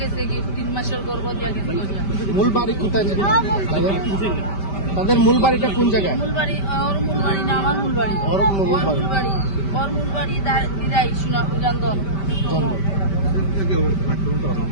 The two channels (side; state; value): right; late; 5.1 ms